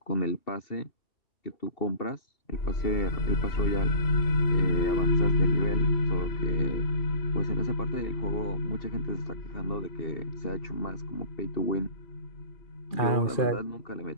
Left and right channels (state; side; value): late; right; 2.4 ms